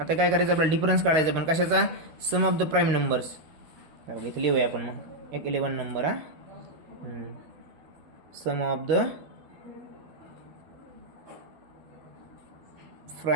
काय करायचं आपल्याला डिफरन्स काढायचा, पण कशाचा, sum of the prime numbers. इथे लिहूया आपण मग एक 11 नंबर हा, sum of the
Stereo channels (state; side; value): late; left; 13 ms